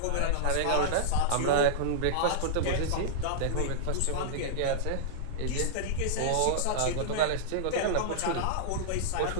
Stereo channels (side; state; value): both; different; correlation -0.02